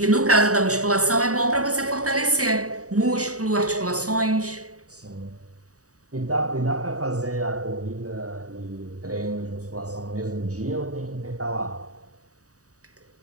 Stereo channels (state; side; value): late; left; 0.66 ms